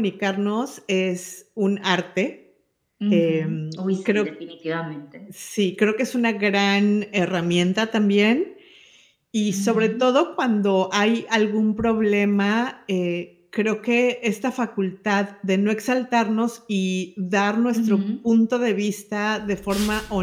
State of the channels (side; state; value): both; identical; correlation 1.00